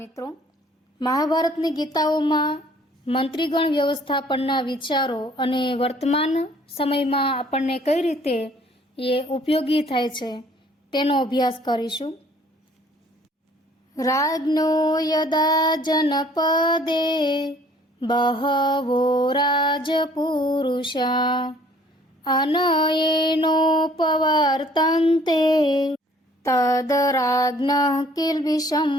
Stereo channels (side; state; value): both; normal; correlation 0.57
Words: મહાભારતની ગીતાઓમાં મંત્રીગણ વ્યવસ્થાપનના વિચારો અને વર્તમાન સમયમાં આપણને કઈ રીતે એ ઉપયોગી થાય છે તેનો અભ્યાસ કરીશું. રાજ્ઞો યદા જનપદે બહવો રાજપુરુષા અનયેનોપવર્તન્તે તદ રાજ્ઞઃ કિલ્બિષં